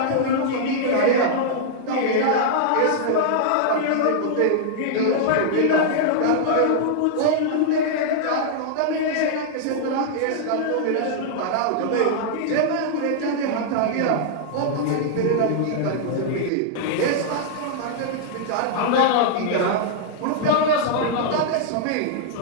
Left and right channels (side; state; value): both; different; correlation -0.01